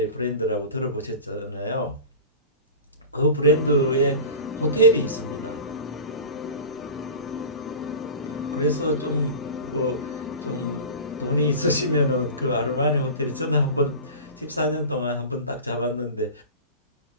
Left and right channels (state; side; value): inverted; both; correlation -0.33